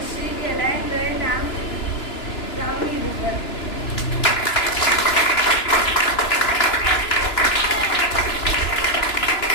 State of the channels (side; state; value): right; late; 2.9 ms